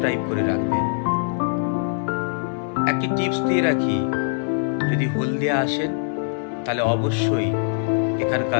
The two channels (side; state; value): right; silent; digital silence